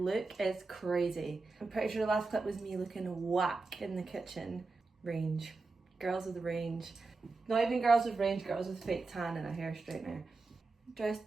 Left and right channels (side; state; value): left; quieter; 3.8 dB